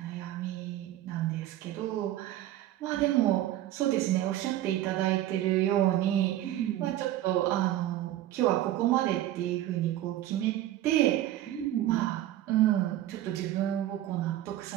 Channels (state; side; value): quieter; left; 13.6 dB